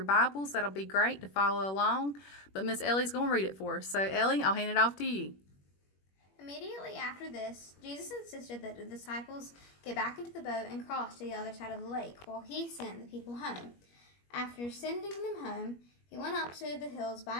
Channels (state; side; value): late; right; 21 ms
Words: Bibles, that'll be great to follow along. But Miss Ellie's going to read it for us. So Ellie, I'll hand it off to you. Immediately after this, Jesus insisted that the disciples get back into the boat and cross to the other side of the lake while he sent the people home. After sending them home, he went up to the hills by